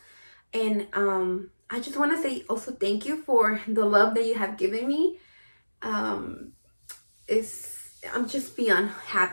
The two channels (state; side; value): inverted; both; correlation -1.00